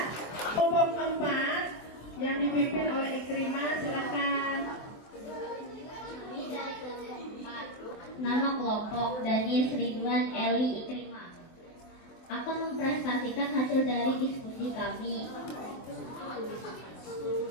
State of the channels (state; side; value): late; right; 24 ms